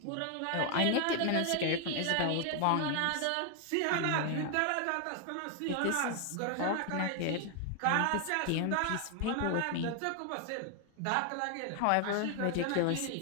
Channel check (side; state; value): both; different; correlation 0.00